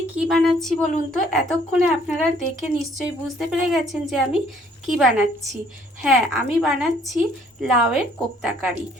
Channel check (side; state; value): both; normal; correlation 0.61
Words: কি বানাচ্ছি বলুন তো? এতক্ষণে আপনারা দেখে নিশ্চয়ই বুঝতে পেরে গেছেন যে আমি কি বানাচ্ছি। হ্যাঁ, আমি বানাচ্ছি লাউয়ের কোপ্তা কারি।